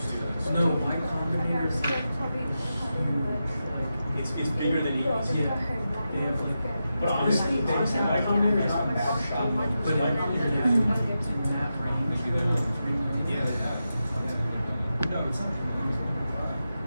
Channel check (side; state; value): both; inverted; correlation -0.89